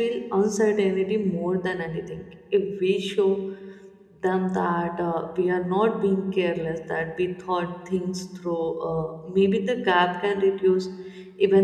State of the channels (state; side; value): identical; both; correlation 1.00